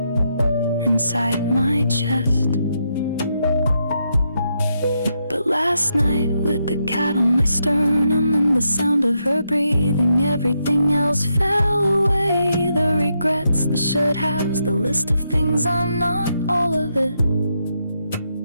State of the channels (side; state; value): both; inverted; correlation -0.81